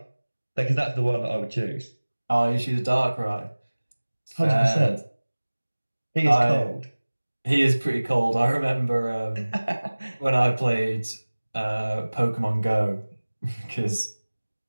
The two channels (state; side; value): inverted; both; correlation -1.00